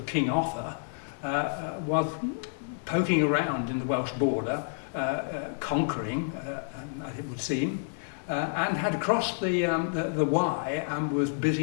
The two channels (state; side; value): silent; right; digital silence